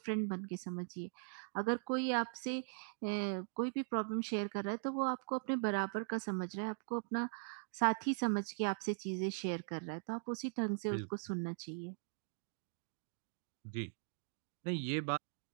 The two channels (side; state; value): left; silent; digital silence